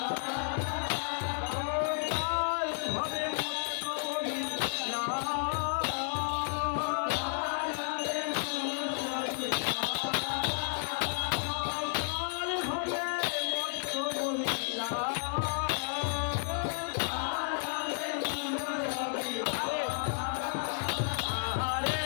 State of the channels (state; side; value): silent; right; 56 dB below the other